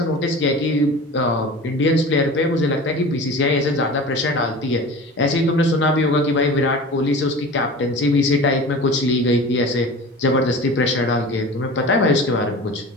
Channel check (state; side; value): normal; both; correlation 0.36